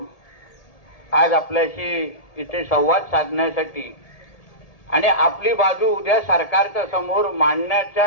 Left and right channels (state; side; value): late; right; 1.7 ms